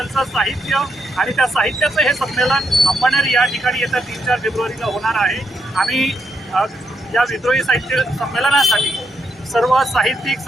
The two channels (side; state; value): both; normal; correlation 0.80